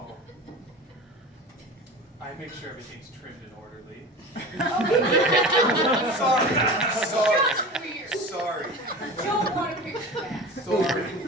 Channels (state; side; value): normal; both; correlation 0.34